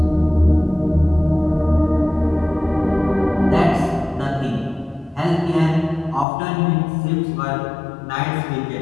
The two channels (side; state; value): right; drops out; at 6.2 s